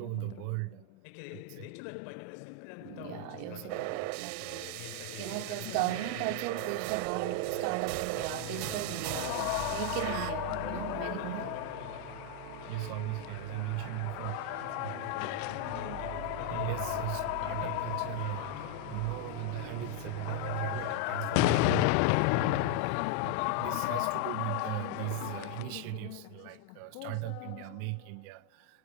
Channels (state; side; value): different; both; correlation 0.00